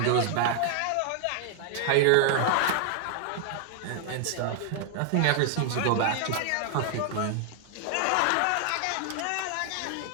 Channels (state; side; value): different; both; correlation 0.00